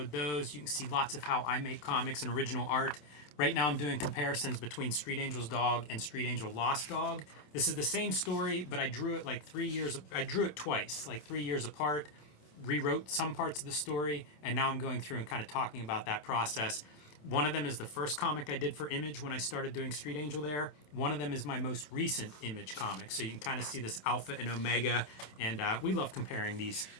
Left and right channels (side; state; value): right; late; 27 ms